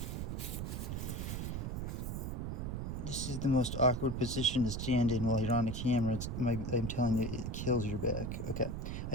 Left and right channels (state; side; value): noise; right; rumble, 3 dB below the sound